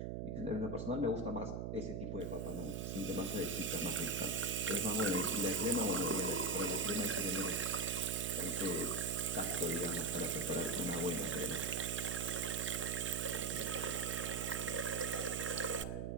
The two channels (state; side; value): noise; right; hum, 3 dB below the sound